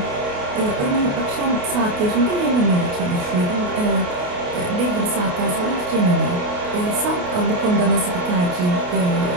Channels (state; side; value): late; left; 28 ms